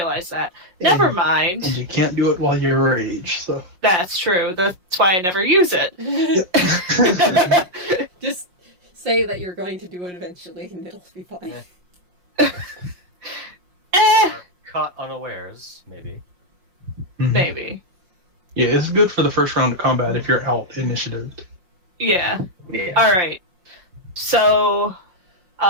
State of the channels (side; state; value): left; late; 5.6 ms